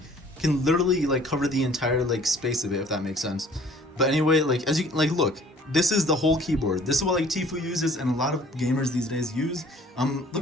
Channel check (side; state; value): both; normal; correlation 0.53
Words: can literally like cover the entire like space of it, if that makes sense. But anyway, like as you like look, this is the whole keyboard. This is what like Tfue uses and a lot of gamers these days use.